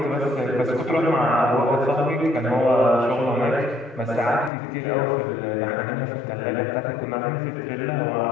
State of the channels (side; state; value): right; drops out; at 4.5 s